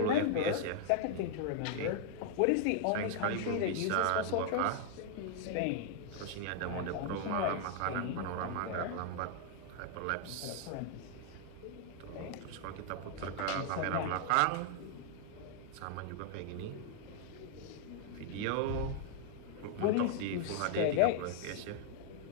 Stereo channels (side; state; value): both; different; correlation 0.00